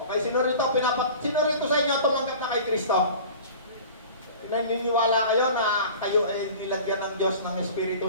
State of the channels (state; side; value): inverted; both; correlation -0.41